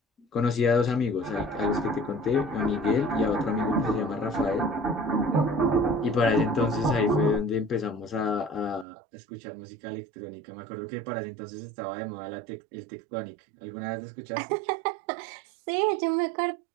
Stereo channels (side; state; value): left; drops out; at 8.8 s